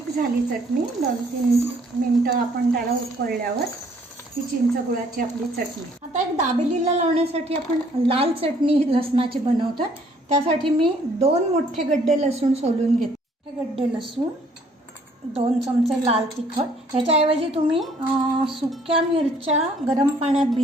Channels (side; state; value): both; normal; correlation 0.62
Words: झाली चटणी। 2-3 मिनटं आपण त्याला उकळल्यावर ही चिंच गुळाची आपली चटणी। आता एक दाबेलीला लावण्यासाठी आपण लाल चटणी लसणाची बनवतो। त्यासाठी मी 2 मोठे गड्डे लसूण सोलून घेते। हे गड्डे लसूण, 2 चमचे लाल तिखट। ह्याच्याऐवजी तुम्ही सुक्या मिरच्या गरम पाण्यात